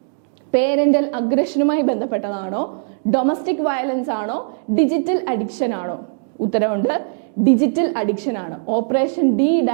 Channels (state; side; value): silent; left; digital silence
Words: പേരന്റൽ അഗ്രഷനുമായി ബന്ധപ്പെട്ടതാണോ, ഡൊമസ്റ്റിക് വയലൻസ് ആണോ, ഡിജിറ്റൽ അഡിക്ഷൻ ആണോ? ഉത്തരവുണ്ട്, ഡിജിറ്റൽ അഡിക്ഷൻ ആണ്. Operation